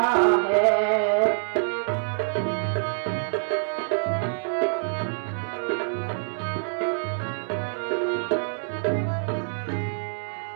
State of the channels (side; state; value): left; silent; 61 dB below the other